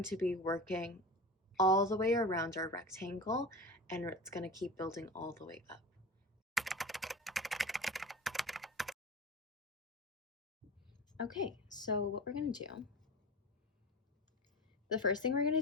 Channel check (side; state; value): both; normal; correlation 0.31